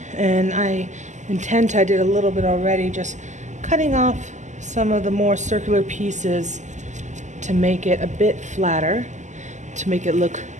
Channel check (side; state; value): left; late; 0.34 ms